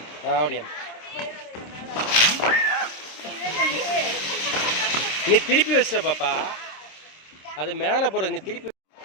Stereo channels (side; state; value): right; late; 26 ms